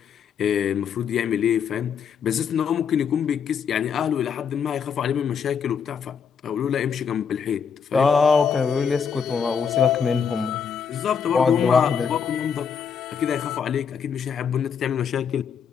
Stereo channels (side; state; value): right; quieter; 6.8 dB